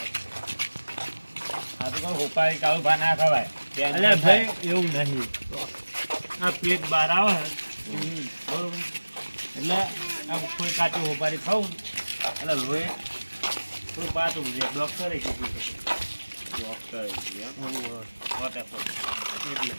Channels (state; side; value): inverted; both; correlation -1.00